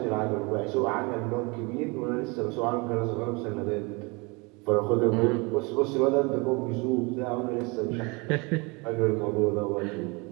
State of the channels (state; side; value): quieter; left; 28.2 dB